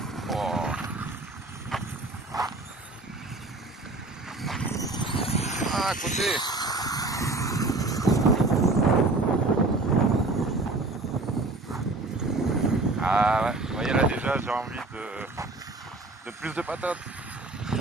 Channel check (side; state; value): left; quieter; 3.2 dB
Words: Oh. Ah, à côté. Ah ouais, vous voyez là déjà, j'ai envie de plus de patates.